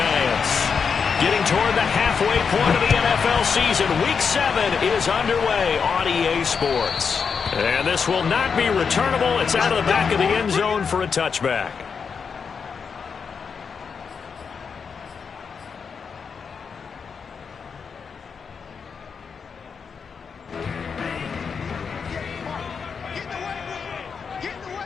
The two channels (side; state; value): right; quieter; 6.0 dB